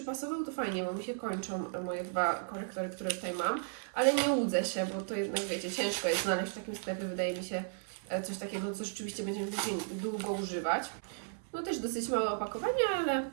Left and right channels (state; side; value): silent; left; 55 dB below the other